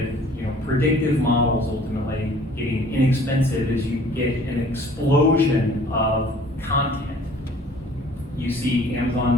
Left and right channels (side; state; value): both; normal; correlation 0.53